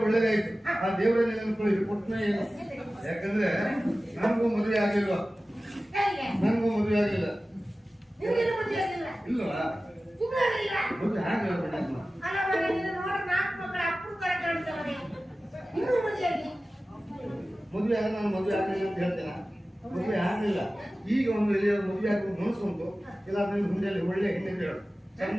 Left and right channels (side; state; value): both; normal; correlation 0.96